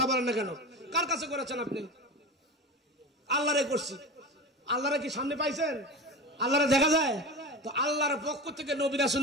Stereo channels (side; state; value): both; normal; correlation 0.28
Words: বলেন না কেন? কার কাছে করেছেন আপনি? আল্লাহরে করছি। আল্লাহরে কি সামনে পাইছেন? আল্লাহরে দেখা যায়? তো আল্লাহর পক্ষ থেকে নবী